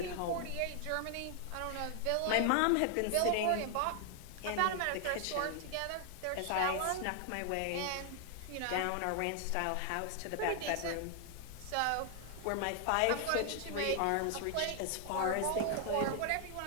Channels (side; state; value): both; different; correlation 0.00